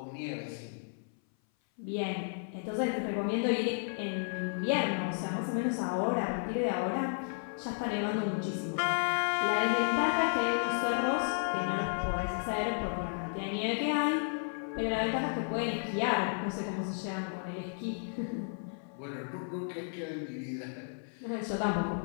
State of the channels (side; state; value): right; silent; 56 dB below the other